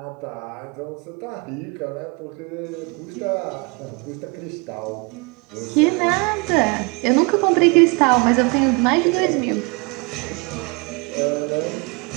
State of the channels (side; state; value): left; quieter; 30.3 dB